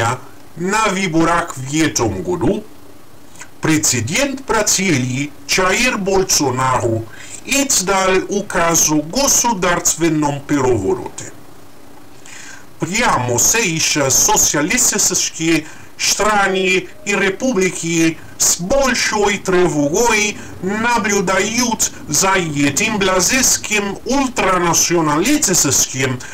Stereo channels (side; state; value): both; identical; correlation 1.00